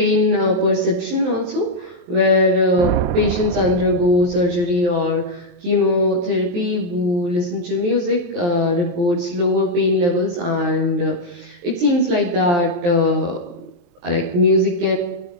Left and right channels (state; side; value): late; left; 23 ms